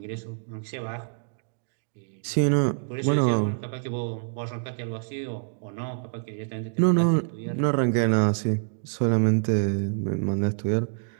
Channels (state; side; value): silent; left; digital silence